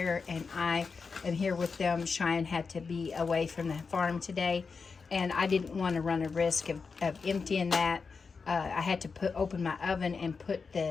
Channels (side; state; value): right; quieter; 5.0 dB